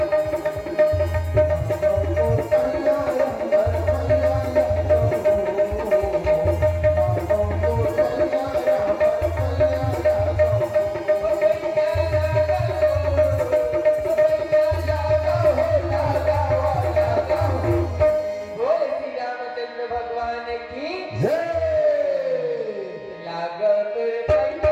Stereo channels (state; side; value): identical; both; correlation 1.00